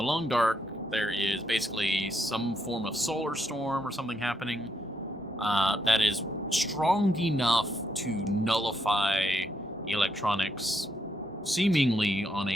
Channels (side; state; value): both; normal; correlation 0.78